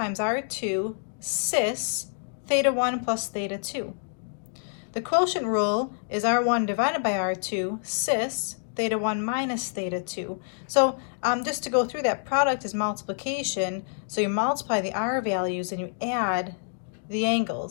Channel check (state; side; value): silent; right; digital silence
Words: R2 cis theta 1 plus theta 2. The quotient rule is R1 divided by R2 cis theta 1 minus theta 2. So just to go through that, product is multiplication. So you multiply the R values and you add the